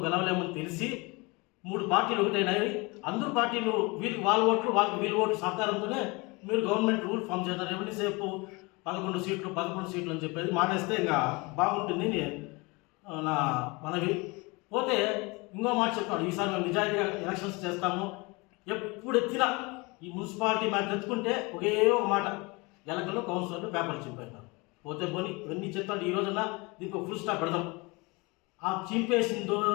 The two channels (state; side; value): quieter; right; 26.3 dB